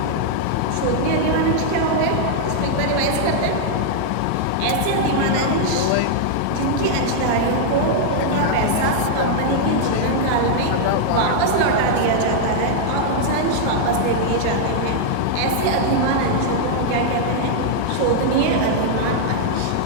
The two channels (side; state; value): both; different; correlation -0.01